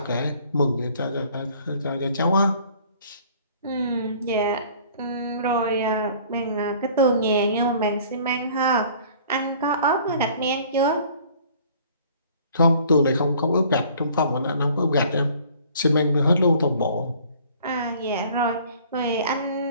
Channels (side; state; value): both; inverted; correlation -0.53